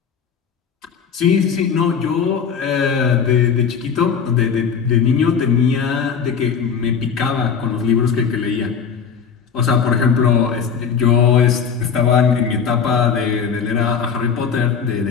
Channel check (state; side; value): quieter; right; 6.6 dB